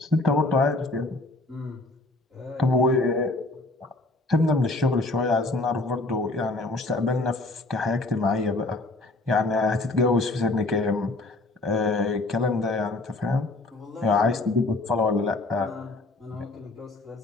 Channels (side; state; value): right; quieter; 3.0 dB